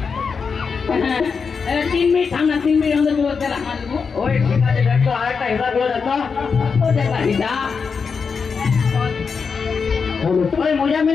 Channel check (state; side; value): quieter; right; 5.5 dB